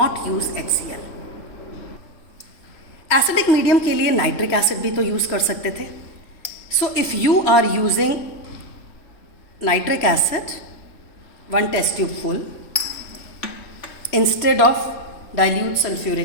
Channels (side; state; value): right; late; 3.5 ms